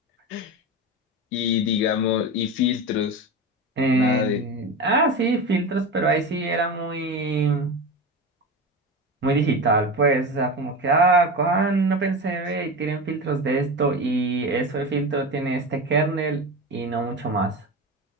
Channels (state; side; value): normal; both; correlation 0.25